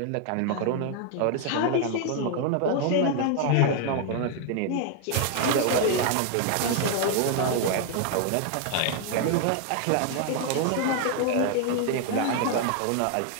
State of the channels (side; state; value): both; different; correlation 0.00